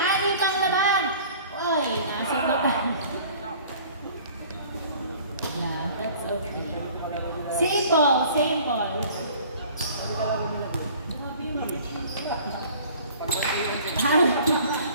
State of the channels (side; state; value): both; inverted; correlation -0.48